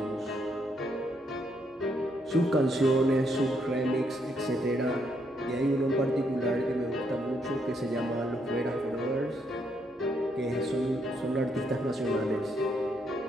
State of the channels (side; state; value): both; normal; correlation 0.75